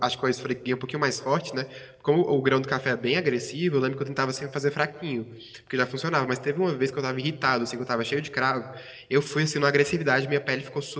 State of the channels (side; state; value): both; identical; correlation 1.00